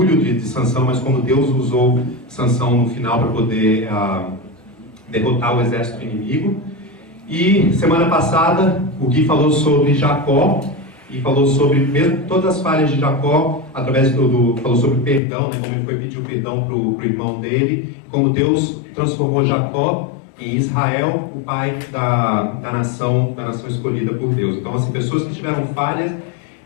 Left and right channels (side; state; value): right; drops out; at 15.2 s